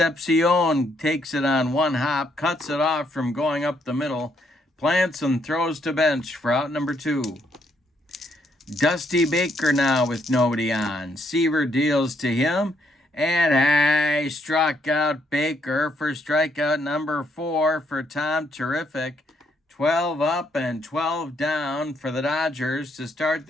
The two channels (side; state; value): both; normal; correlation 0.73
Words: takes it on one hop, cuts it off from going up the middle, plants and throws to bench for out number 2. Dusty Baker now with nobody on. Seaver deals to him, and struck out Baker for strikeout number 4 for Tom Terrific. 12 up and 12 down for the Dodgers to start